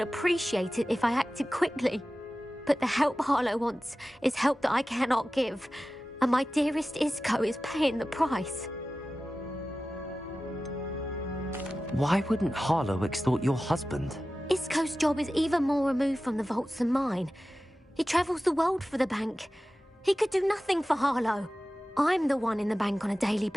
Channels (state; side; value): normal; both; correlation 0.95